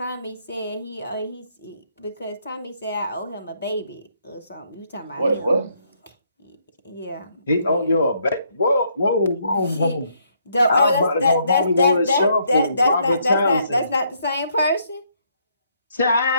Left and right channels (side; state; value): both; inverted; correlation -0.71